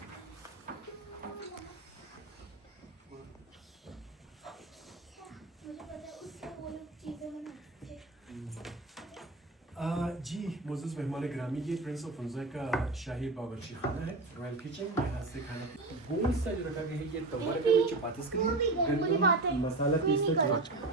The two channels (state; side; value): quieter; left; 3.1 dB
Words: मुझे पता है उससे वो लोग चीज़ें बनाते थे। जी मोज़ेज़ मेहमान गिरामी, ये प्रिंस ऑफ हुंजा का शाही बावर्ची खाना है, रॉयल किचन। यहाँ से खाना गोल सा जो रखा गया है, ये तवा रखा है चपातीस के लिए, गंदम मसाला पीसना